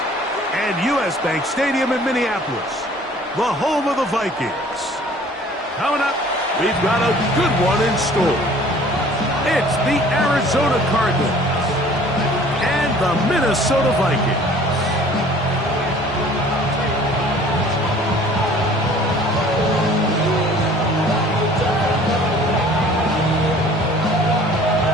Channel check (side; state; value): both; normal; correlation 0.51